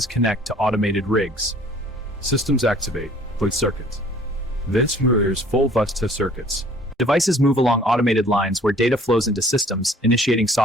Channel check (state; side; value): normal; both; correlation 0.54